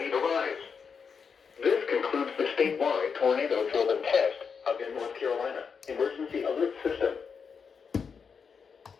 need arise. This concludes the statewide tornado drill and test of the North Carolina Emergency Alert System.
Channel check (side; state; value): right; quieter; 6.0 dB